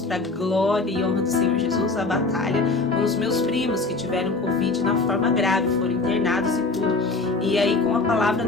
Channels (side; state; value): right; quieter; 3.6 dB